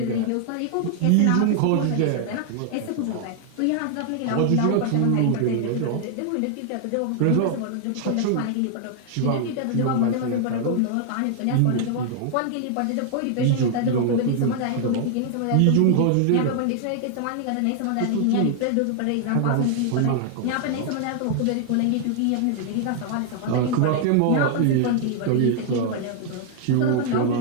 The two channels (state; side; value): different; both; correlation 0.00